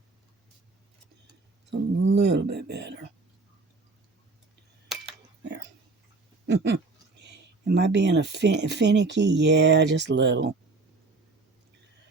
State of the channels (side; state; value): left; quieter; 3.7 dB